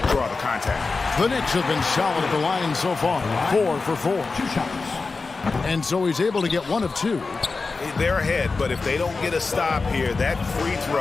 draw the contact. The Knicks have been solid at the line so far. 4 for 4. 2 shots. And so he's able to get 1 of 2. They're ahead, but if they don't get a stop here, that free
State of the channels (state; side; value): quieter; right; 4.1 dB